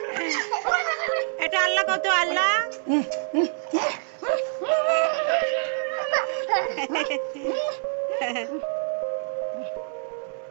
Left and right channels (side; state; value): left; silent; 61 dB below the other